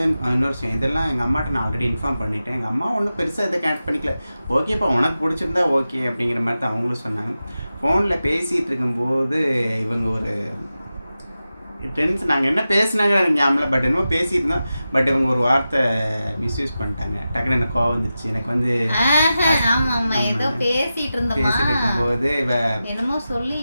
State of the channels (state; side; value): inverted; both; correlation -0.93